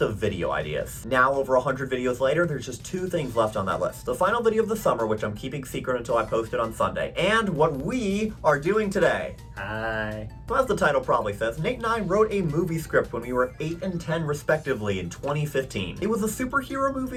video ideas. Now, over 100 videos later, there's just 2 things left on that list. The final video of the summer, which I'm keeping secret until I post it on Sunday, and what we are doing today. Hi. So as the title probably says, Nate and I wrote a movie script when we were 8 and 10 respectively in 2015. It was a superhero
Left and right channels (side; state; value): both; identical; correlation 1.00